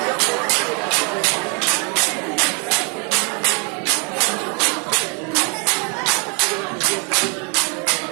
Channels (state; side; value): quieter; left; 35.4 dB